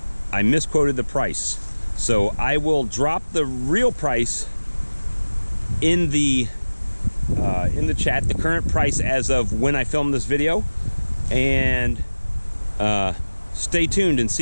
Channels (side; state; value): both; inverted; correlation -1.00